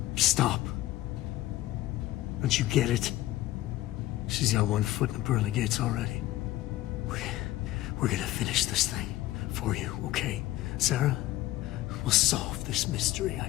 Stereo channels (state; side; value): quieter; right; 15.8 dB